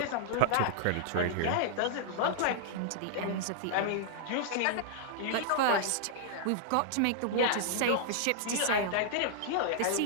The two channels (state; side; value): different; both; correlation -0.01